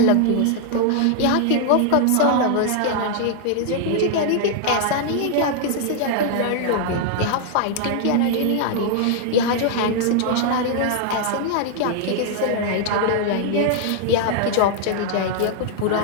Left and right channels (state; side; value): different; both; correlation 0.00